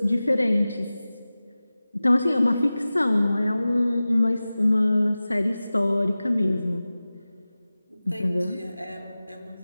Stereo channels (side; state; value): both; inverted; correlation -0.96